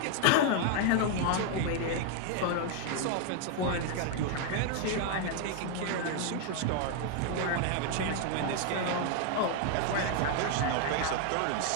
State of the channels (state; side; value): different; both; correlation 0.01